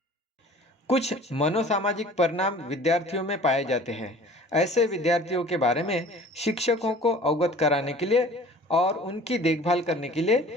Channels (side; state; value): both; normal; correlation 0.47